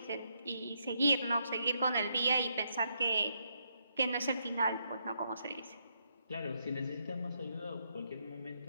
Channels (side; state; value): both; inverted; correlation -0.77